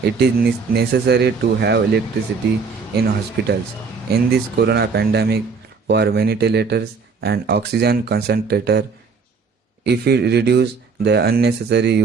it is necessary to have electricity in hospitals. In this corona pandemic, for ventilators and oxygen concentrator, if we reduce the unnecessary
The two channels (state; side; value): quieter; left; 5.0 dB